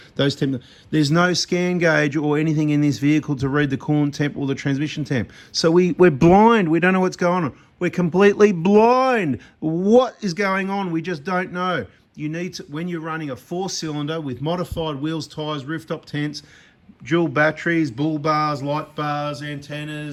those temps. There's no scan gauge or anything in this vehicle to read the coolant temp or the transmission temp. So we're blind. We don't know what's going on. We're completely blind. What is going on? We just don't know. You need to, when you're running a 4-cylinder with modified wheels, tyres, rooftop tents, dual batteries, bull bars, light bars,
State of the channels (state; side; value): identical; both; correlation 1.00